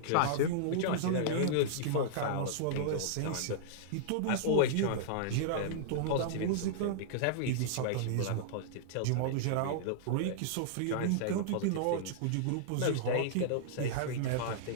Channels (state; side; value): different; both; correlation -0.01